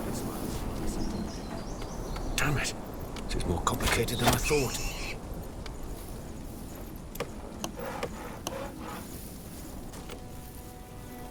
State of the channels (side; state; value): both; identical; correlation 1.00